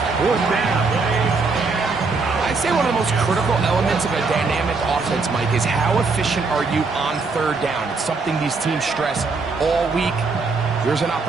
4th down. I'd say one of the most critical elements of a dynamic offense, Mike, is how efficient are you on 3rd down? It's something these teams stress all week. There's an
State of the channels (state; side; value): quieter; left; 4.2 dB